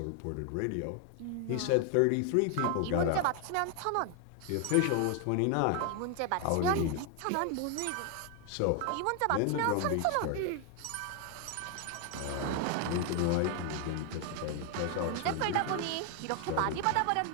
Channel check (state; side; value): different; both; correlation 0.00